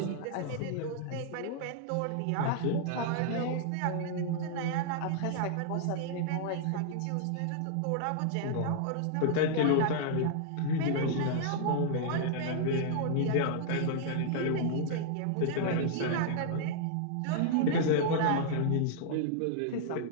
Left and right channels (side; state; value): both; different; correlation -0.01